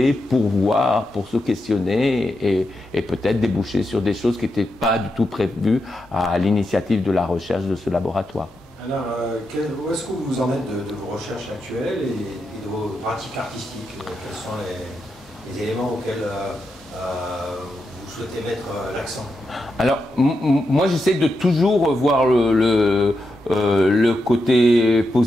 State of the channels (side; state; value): both; normal; correlation 0.86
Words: pour voir, pour se questionner et peut-être déboucher sur des choses qui n'étaient pas du tout prévues à l'initiative de la recherche de ce laboratoire. Alors, où est-ce que vous en êtes de vos recherches actuelles et de vos pratiques artistiques? Quels sont les éléments auxquels vous souhaitez mettre l'accent? Alors, moi, j'essaie de toujours voir le côté